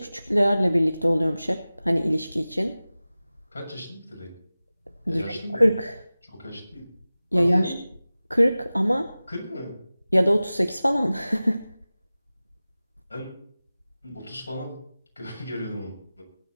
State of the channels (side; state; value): both; inverted; correlation -0.97